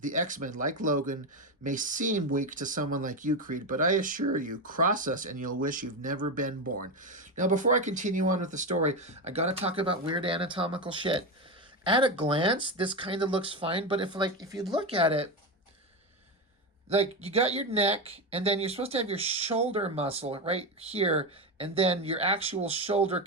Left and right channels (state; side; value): normal; both; correlation 0.14